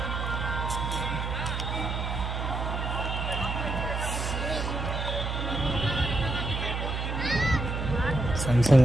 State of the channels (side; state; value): right; noise; hum, 2 dB below the sound